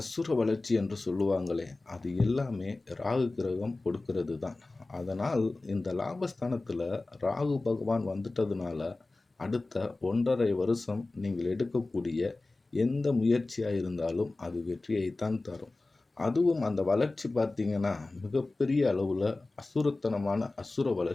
வளர்ச்சி என்று சொல்லுவாங்களே, அது எல்லாமே ராகு கிரகம் கொடுக்கிறது தான். அதனால் இந்த லாபஸ்தானத்தில் ராகு பகவான் வந்துட்டதுனால அடுத்த 1.5 வருஷம் நீங்கள் எடுக்கக்கூடிய எந்த முயற்சியாக இருந்தாலும் அது வெற்றியைத்தான் தரும். அதுவும் அந்த வளர்ச்சி பார்த்தீங்கன்னா மிகப்பெரிய அளவில் அசுரத்தனமான அசுர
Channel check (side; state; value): right; quieter; 3.2 dB